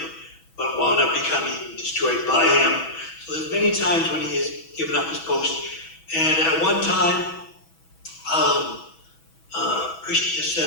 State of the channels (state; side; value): late; right; 6.1 ms